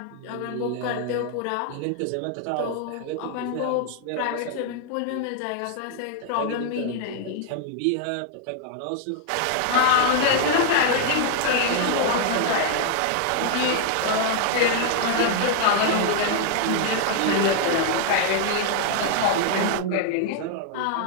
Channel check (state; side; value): different; both; correlation 0.00